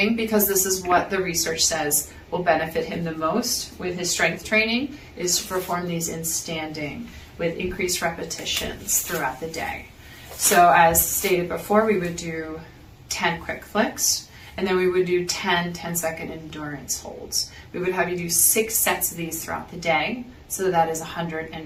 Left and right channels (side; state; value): both; identical; correlation 1.00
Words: because this is what the research says will benefit him the most with his strength training, is to perform these in standing with increased repetitions throughout the day. So as stated before, we would do 10 quick flicks, and then we would do 10 10-second endurance holds. We would have you do 6 sets of these throughout the day, so that is